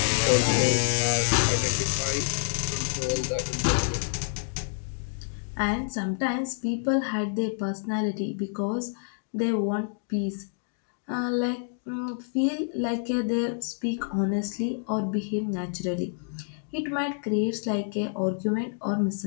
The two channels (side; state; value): right; silent; digital silence